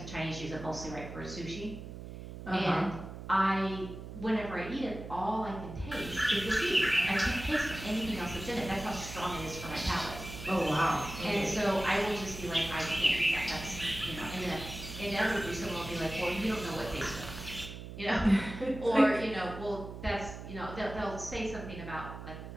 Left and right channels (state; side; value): noise; right; hum, 11 dB below the sound